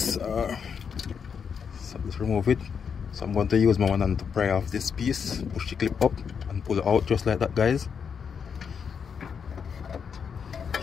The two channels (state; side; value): quieter; right; 6.7 dB